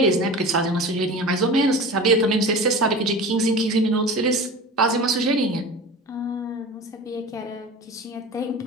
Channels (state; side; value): normal; both; correlation 0.34